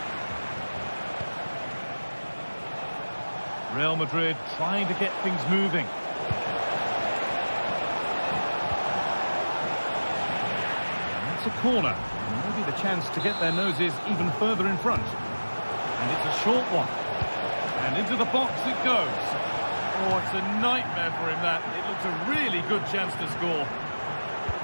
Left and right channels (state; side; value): inverted; both; correlation -1.00